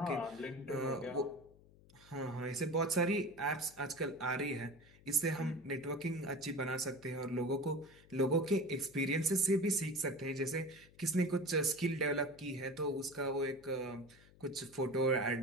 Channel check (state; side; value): noise; left; hum, 25 dB below the sound